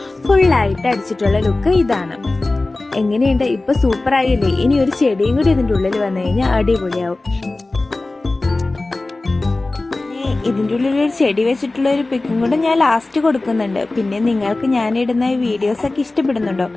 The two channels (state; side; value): quieter; right; 3.1 dB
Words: ഫുള്ളായിട്ട് അടിച്ചിട്ടുള്ള ലുക്ക് ഇതാണ്. എങ്ങനെയുണ്ട്? ഇപ്പൊ സൂപ്പർ ആയില്ലേ? ഇനി ഒരു ചെടിയും കൂടി ഇതിൻ്റെ ഉള്ളിൽ വന്നു കഴിഞ്ഞാൽ അടിപൊളിയാവും. ഇതിൻ്റെ ഉള്ളിൽ ഒരു ചെടി വെച്ചിട്ടുള്ള ഒരു പിക്കും കൂടെ ഞാൻ ലാസ്റ്റ് കൊടുക്കുന്നുണ്ട്. പിന്നെ നിങ്ങൾക്ക് ഞാനിടുന്ന ഈ വീഡിയോസൊക്കെ